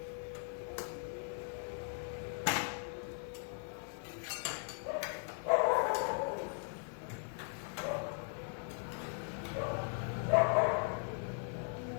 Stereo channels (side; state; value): right; silent; 52 dB below the other